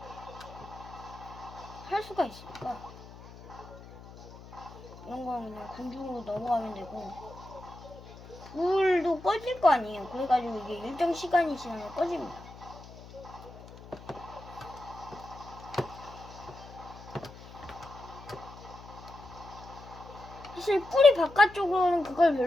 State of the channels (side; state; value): left; noise; hum, 17 dB below the sound